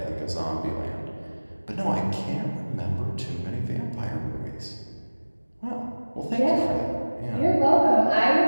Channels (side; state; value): both; inverted; correlation -1.00